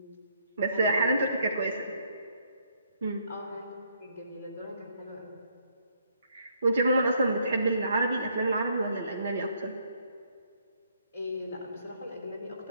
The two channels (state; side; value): inverted; both; correlation -0.70